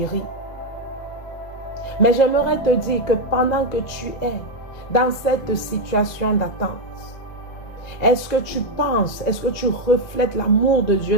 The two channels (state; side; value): late; right; 2.0 ms